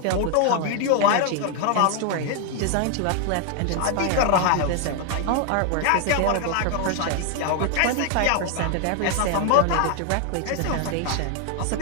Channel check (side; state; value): both; different; correlation 0.00